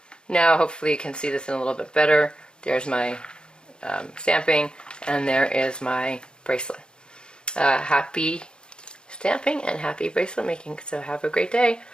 Now hopefully you can see this in a little bit better. There's my stamping, and there is my bracelet. Happy stamping and happy bracelet making. So have a great day.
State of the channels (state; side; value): late; right; 0.050 ms